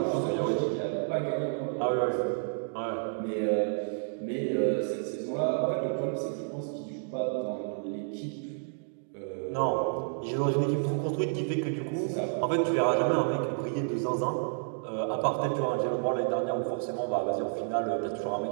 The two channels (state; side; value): silent; left; digital silence